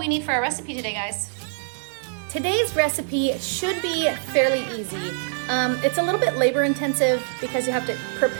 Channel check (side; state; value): left; silent; digital silence